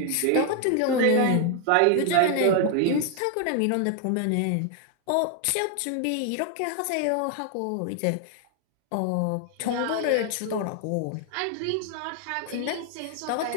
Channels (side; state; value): both; different; correlation 0.00